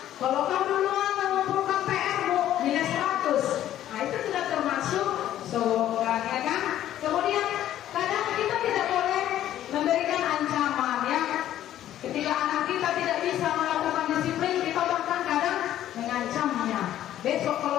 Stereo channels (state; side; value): quieter; right; 12.2 dB